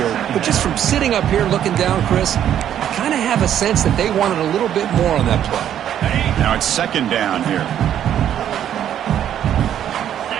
but just from sitting up here looking down, Chris, I kind of have a sense that they wanted a little bit more on that play. Now it's second down here.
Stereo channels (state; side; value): quieter; left; 10.3 dB